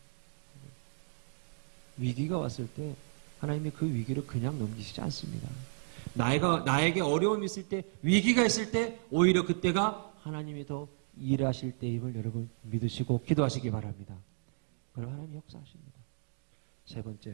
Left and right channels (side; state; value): left; silent; digital silence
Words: 위기가 왔을 때 하나님이 그 위기를 그냥 넘기시지 않습니다. 나에게 어려움이 있을 때 위기가 있을 때 오히려 그때가 하나님이 더 일하실 때임을 여러분 믿으시고 기도하시기 바랍니다. 그럼 하나님이 역사하십니다. 세